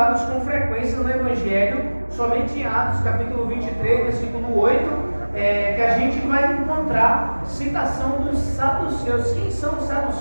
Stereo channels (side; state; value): both; inverted; correlation -1.00